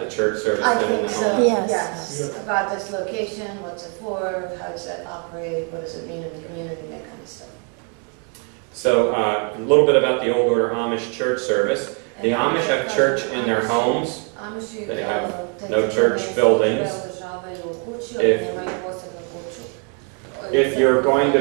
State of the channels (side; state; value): left; quieter; 38.5 dB